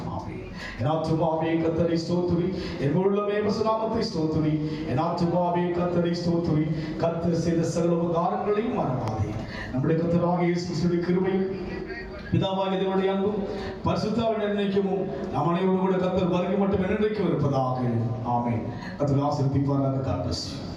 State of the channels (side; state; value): both; identical; correlation 1.00